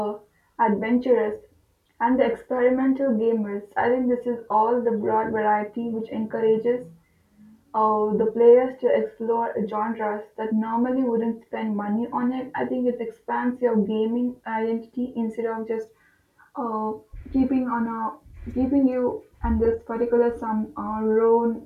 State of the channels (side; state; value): both; identical; correlation 1.00